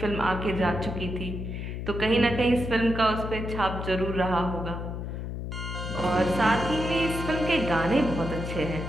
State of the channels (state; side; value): noise; left; hum, 6 dB below the sound